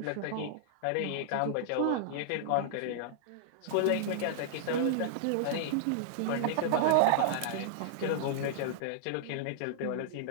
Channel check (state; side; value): different; both; correlation -0.01